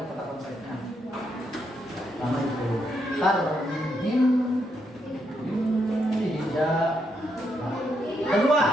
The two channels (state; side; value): normal; both; correlation 0.78